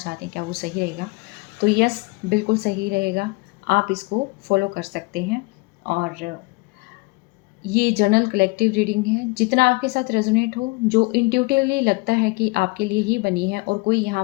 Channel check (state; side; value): quieter; right; 25.9 dB